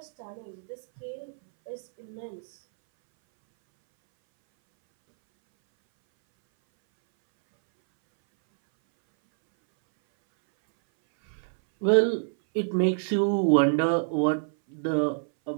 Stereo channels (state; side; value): silent; left; 60 dB below the other